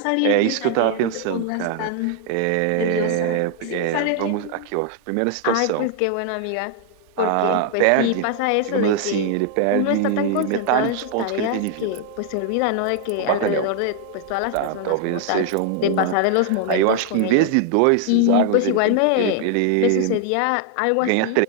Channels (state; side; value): different; both; correlation 0.00